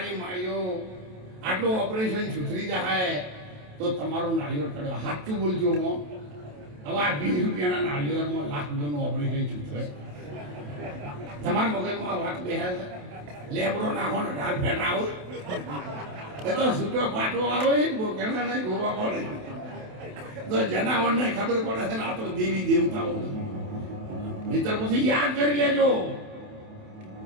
માળીઓ આટલું ઓપરેશન સુધરી જાય તો તમારું નાળિયેર ચડે. સાચું બોલજો હો. હવે આ 20 રૂપિયાના નાળિયેરમાં લાખ રૂપિયાનું ઓપરેશન સુધરે? તમારા મગજમાં વાત બેસે છે? લેબડો નાખો ને ઢાલ ફેટ આવો એ તો છૂટો પાટો આવે બોકેના નહીં ગોવા પડે તો જનાવરને ખબર પડે છે ને આ તો દેવી દેવતાઓ. મિત્ર પછી યાદ કરી લેજો,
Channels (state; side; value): late; left; 27 ms